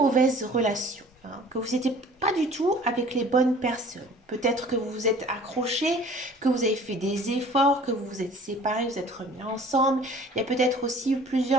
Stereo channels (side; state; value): both; normal; correlation 0.49